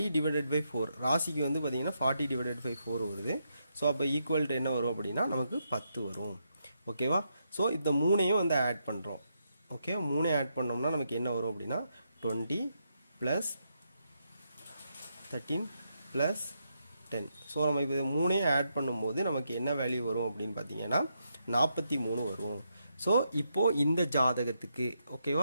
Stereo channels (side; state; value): both; inverted; correlation -0.81